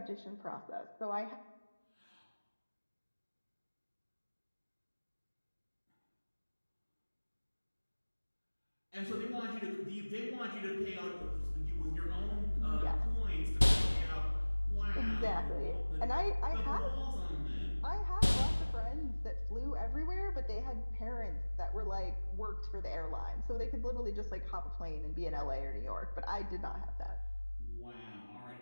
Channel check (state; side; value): inverted; both; correlation -1.00